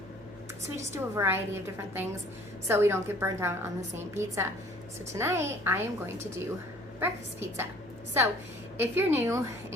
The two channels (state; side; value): noise; right; hum, 24 dB below the sound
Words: So we just do a variety of different things so we don't get burnt out on the same pizza. So tonight I am going to do breakfast pizza. So if you're new